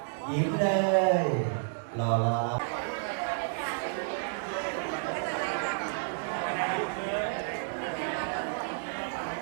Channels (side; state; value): left; silent; digital silence